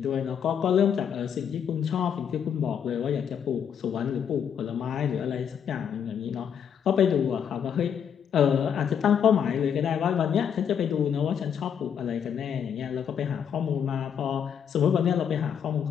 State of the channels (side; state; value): right; quieter; 8.0 dB